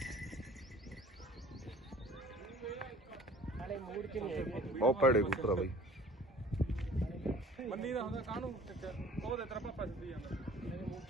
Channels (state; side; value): normal; both; correlation 0.49